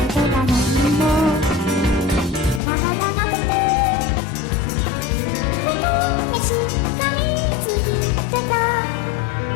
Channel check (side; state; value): right; drops out; at 2.6 s